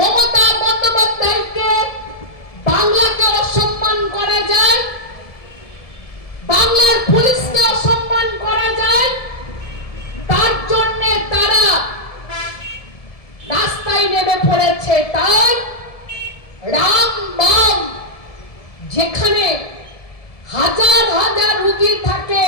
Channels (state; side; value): late; right; 1.7 ms